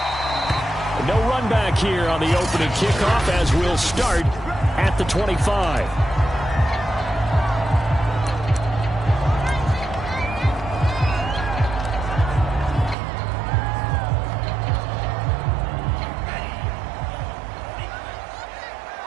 No run back here on the opening kickoff as we'll start at the 25.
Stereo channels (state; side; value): drops out; left; at 13.0 s